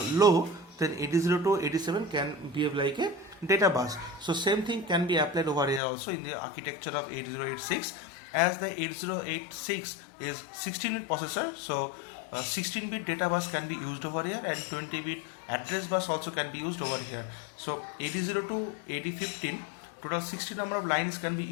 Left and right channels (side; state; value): right; drops out; at 5.8 s